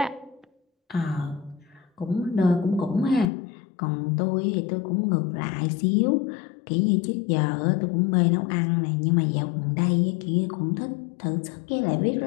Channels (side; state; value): right; drops out; at 3.3 s